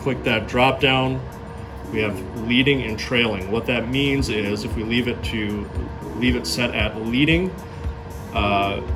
click that drop down, we have leading and trailing. What that means is if we leave it set at leading,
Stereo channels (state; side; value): identical; both; correlation 1.00